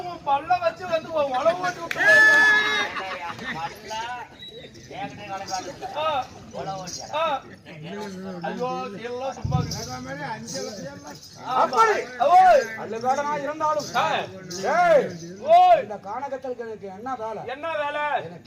உன் பல்ல வச்சு வந்து உழவு ஓட்டி விட்டு இருந்தாலும் இந்த கானகத்தலுக்கு எனக்கு என்ன வேலை? என்ன வேலை?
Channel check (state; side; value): identical; both; correlation 1.00